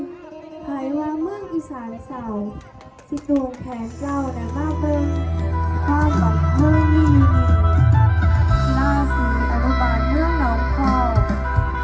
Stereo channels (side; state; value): both; identical; correlation 1.00